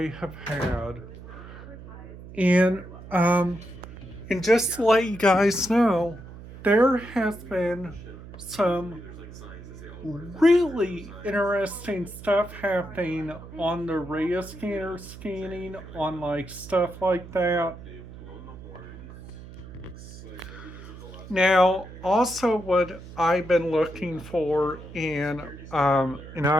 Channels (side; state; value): right; noise; hum, 15 dB below the sound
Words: have had. And, um, and just to let you guys know, there has been some really interesting stuff happening on the radio scanner scanning on like stuff like that. Now, also what I've been looking for and